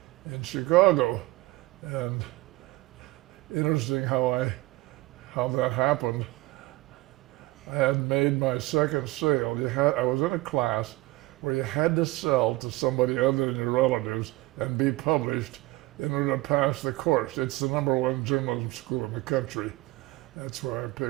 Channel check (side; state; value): left; quieter; 20.1 dB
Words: in Chicago. And interesting how that happened. I had made my second sale. I was in a class where you had to sell to somebody other than your relatives and be published in order to pass the course. It's the #1 journalism school in the country. That's why I